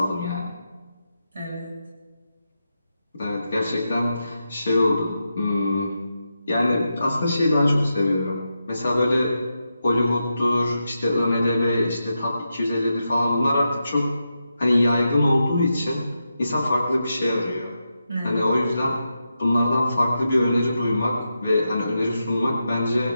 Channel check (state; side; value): inverted; both; correlation -0.87